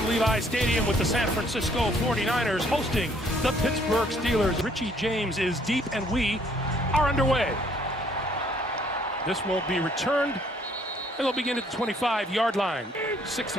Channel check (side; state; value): both; normal; correlation 0.63